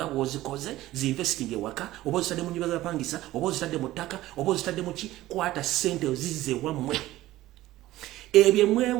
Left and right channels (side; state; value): left; quieter; 16.0 dB